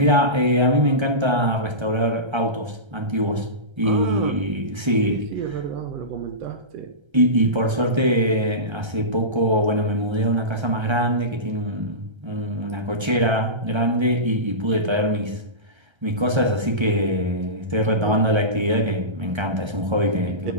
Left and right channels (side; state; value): left; late; 1.3 ms